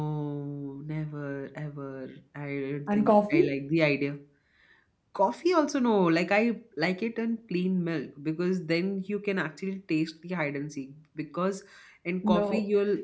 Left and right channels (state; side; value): identical; both; correlation 1.00